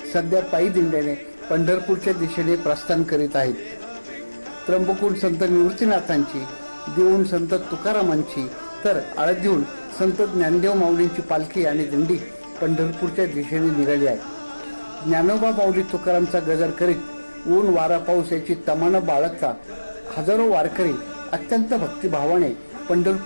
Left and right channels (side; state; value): both; inverted; correlation -1.00